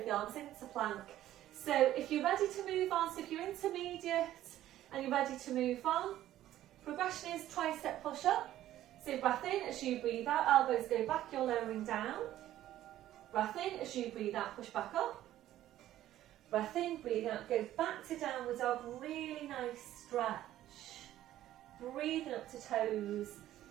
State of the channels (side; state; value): left; quieter; 13.3 dB